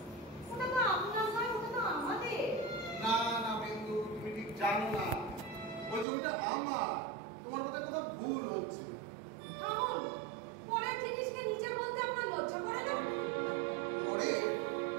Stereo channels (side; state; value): left; drops out; at 6.1 s